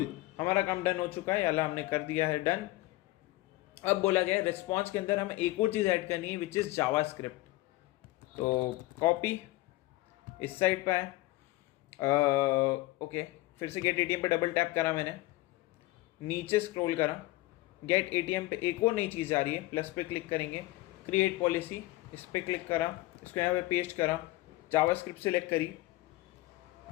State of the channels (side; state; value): right; quieter; 19.0 dB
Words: हमारा काम डन हो चुका है, याला हमने कर दिया है डन। अब बोला गया है रिस्पॉन्स के अंदर हमें एक और चीज़ ऐड करनी है विच इज़ जावास्क्रिप्ट। तो कॉपी, इस साइड पे है, ओके फिर से गेट एटीएम पे डबल टैप करा मैंने, नीचे स्क्रॉल करा, गेट एटीएम पे एक और नई चीज़ आ रही है, प्लस पे क्लिक करेंगे, क्रिएट पॉलिसी, इस पर क्लिक करा, इसको यहाँ पे पेस्ट करा, जावास्क्रिप्ट सेलेक्ट करी